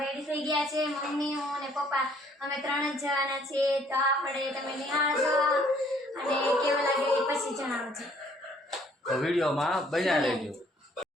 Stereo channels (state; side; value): normal; both; correlation 0.62